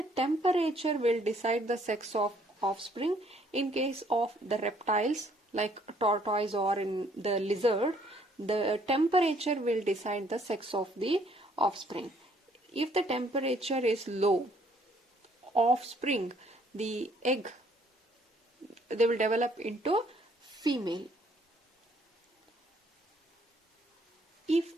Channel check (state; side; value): normal; both; correlation 0.64